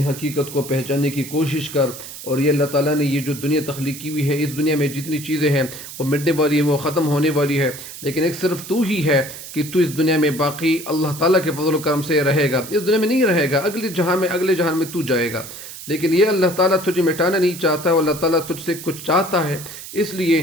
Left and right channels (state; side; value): noise; right; hiss, 12 dB below the sound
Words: حقیقت کو پہچاننے کی کوشش کر، اور یہ اللہ تعالیٰ نے یہ جو دنیا تخلیق کی ہوئی ہے، اس دنیا میں جتنی چیزیں ہیں وہ مٹنے والی ہیں، وہ ختم ہونے والی ہے، لیکن ایک صرف تو ہی ہے کہ تو اس دنیا میں باقی اللہ تعالیٰ کے فضل و کرم سے رہے گا، اس دنیا میں نہیں رہے گا، اگلے جہان میں تو جائے گا، لیکن یہ اللہ تعالیٰ تجھے مٹانا نہیں چاہتا، اور اللہ تعالیٰ تجھ سے کچھ چاہتا ہے، اس